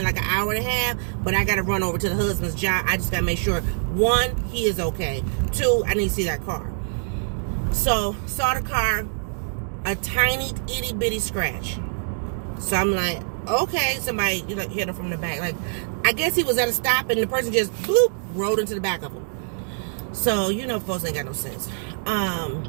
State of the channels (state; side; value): silent; left; digital silence